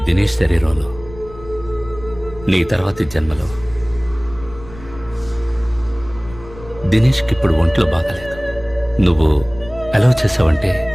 దినేష్ శరీరంలో, నీ తర్వాతి జన్మలో. దినేష్కి ఇప్పుడు ఒంట్లో బాగాలేదు. నువ్వు అలౌ చేసావంటే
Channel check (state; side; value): noise; left; rumble, 17 dB below the sound